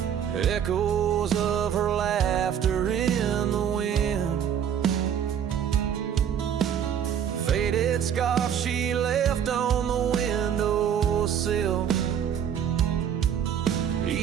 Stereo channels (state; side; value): quieter; left; 8.8 dB